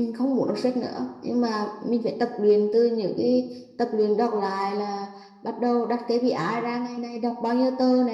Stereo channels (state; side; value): identical; both; correlation 1.00